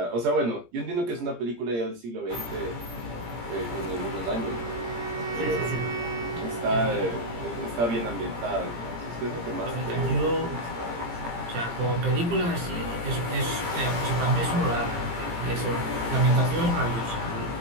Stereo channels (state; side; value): late; left; 17 ms